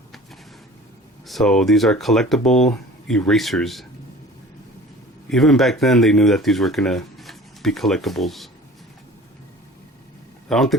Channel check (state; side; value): normal; both; correlation 0.44